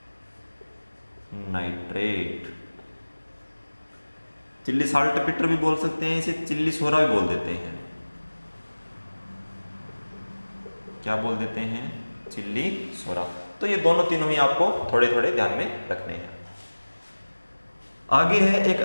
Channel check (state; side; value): inverted; both; correlation -1.00